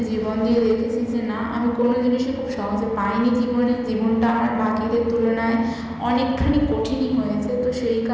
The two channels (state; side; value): identical; both; correlation 1.00